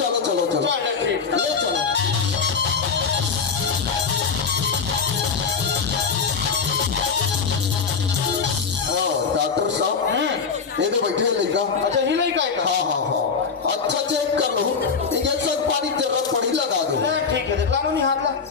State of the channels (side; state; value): right; quieter; 5.5 dB